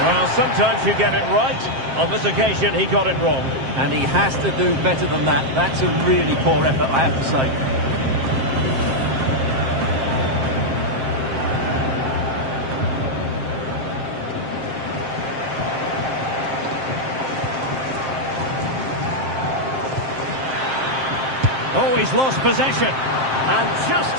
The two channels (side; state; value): left; late; 7.6 ms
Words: Well, sometimes you get it right. On this occasion, he got it wrong. And he has to do better than that. That's a really poor effort, I have to say. Oh, he's lost possession. And just